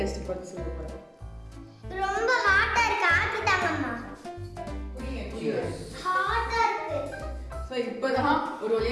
பார்த்து சொல்ல போறேன். ரொம்ப ஹாட்டா இருக்கு, ஆத்தி தாங்கம்மா. குடிங்க. ஹாட்டா இருக்கு. ஸோ இப்போதான் ஒரு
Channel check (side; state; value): both; identical; correlation 1.00